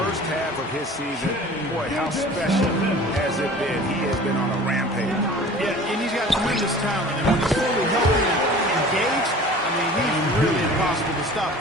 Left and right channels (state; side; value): normal; both; correlation 0.43